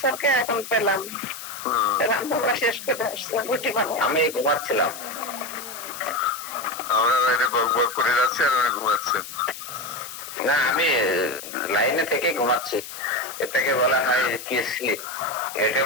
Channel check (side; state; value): left; noise; hiss, 11 dB below the sound